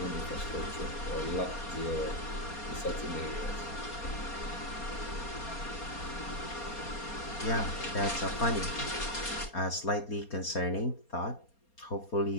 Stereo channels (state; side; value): late; right; 4.3 ms